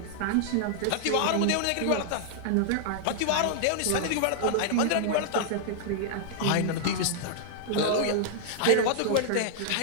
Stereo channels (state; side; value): different; both; correlation -0.01